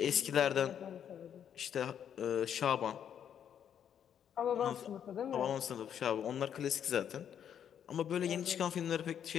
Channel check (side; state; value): right; quieter; 9.0 dB